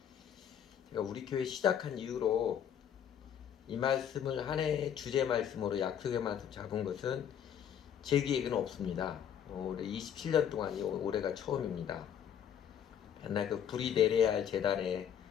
제가 우리 교회 시작한 이후로 이 말씀을 한 해의 주제 말씀으로 약속의 말씀 잡은 것은 제 기획은 없습니다. 올해 27년 동안이 올해가 처음입니다. 맨날 그 불이 내려야 할 재단에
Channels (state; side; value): quieter; right; 9.0 dB